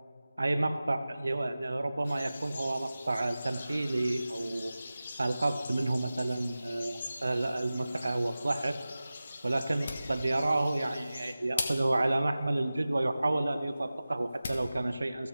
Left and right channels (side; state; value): both; inverted; correlation -0.96